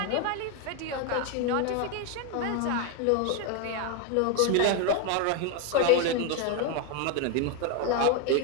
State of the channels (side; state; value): both; different; correlation 0.01